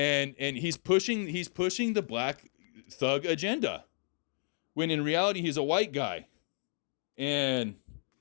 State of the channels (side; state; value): right; silent; digital silence